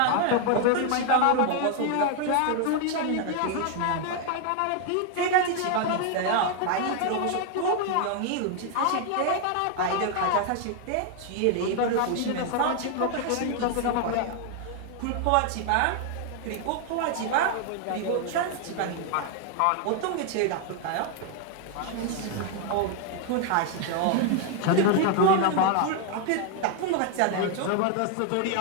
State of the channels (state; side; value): different; both; correlation 0.00